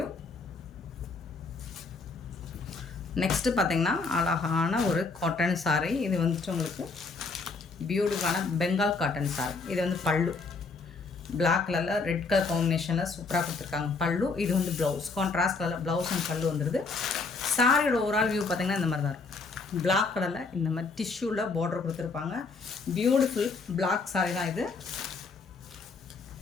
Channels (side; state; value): right; quieter; 4.2 dB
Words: நெக்ஸ்ட்டு பார்த்திங்கன்னா அழகான ஒரு காட்டன் சாரி. இது வந்துட்டு உங்களுக்கு பியூட்டிஃபுல்லான பெங்கால் காட்டன் சாரி. இது வந்து பல்லு பிளாக் கலரில் ரெட் கலர் காம்பினேஷனில் சூப்பராக கொடுத்துருக்காங்க பல்லு. இது வந்து ப்ளவுஸ், கான்ட்ராஸ்ட் கலரில் ப்ளவுஸ் அண்ட் பல்லு வந்துடுது. சாரியோட ஓவரால் வியூ பார்த்திங்கன்னா இந்த மாதிரி தான் இருக்கும். பிளாக் கலரில் இந்த மாதிரி டிஷ்யூவில் பார்டர் கொடுத்துருப்பாங்க. பியூட்டிஃபுல் பிளாக் சாரி தான் இது.